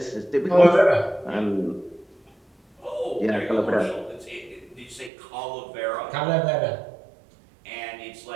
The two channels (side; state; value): left; drops out; at 5.1 s